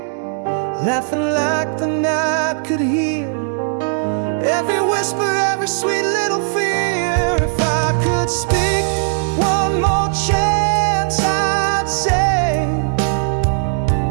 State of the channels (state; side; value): silent; left; digital silence